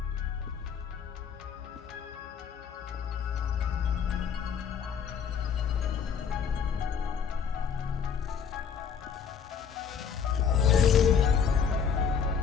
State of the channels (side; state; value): right; quieter; 6.9 dB